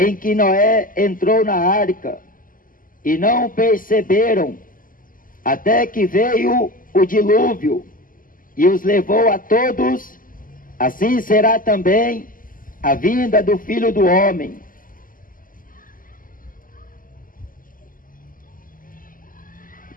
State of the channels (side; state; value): right; late; 0.41 ms